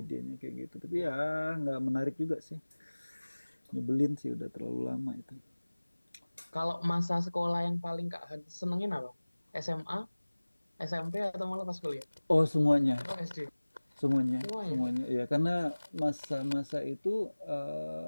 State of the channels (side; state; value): both; inverted; correlation -1.00